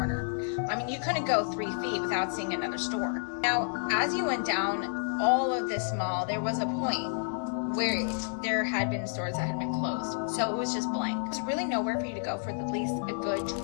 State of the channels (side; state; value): right; silent; digital silence